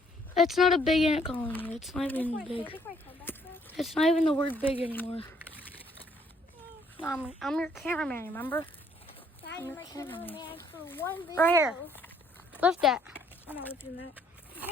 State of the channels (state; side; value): normal; both; correlation 0.66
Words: It's not a big ant colony. It's not even big. It's not even the word big anymore. I'm your cameraman, remember? I'm your cameraman for one video. Right here. Lift that. I'm not lifting that. Look